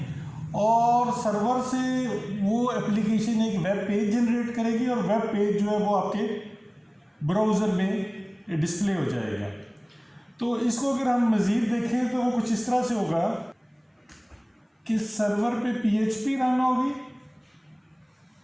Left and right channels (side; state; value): both; identical; correlation 1.00